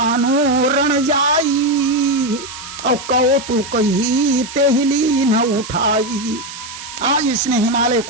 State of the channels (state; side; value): noise; right; hiss, 12 dB below the sound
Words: रण जाई और कहो तू कही तेहली न उठाई। आज इसने हिमालय